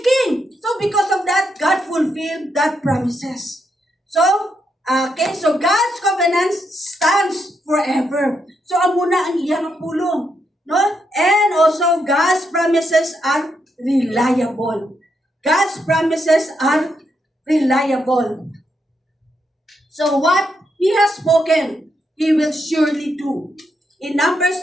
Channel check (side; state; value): both; normal; correlation 0.80